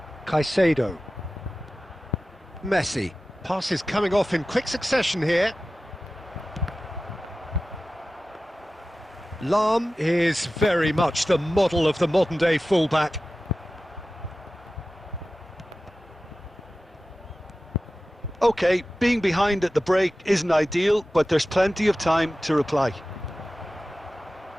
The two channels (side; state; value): both; normal; correlation 0.95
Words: Caicedo. Messi. Passes coming off in quick succession here. Lahm is very much the model of the modern-day fullback. OK, being behind at the break isn't ideal, but there's plenty of time to reply.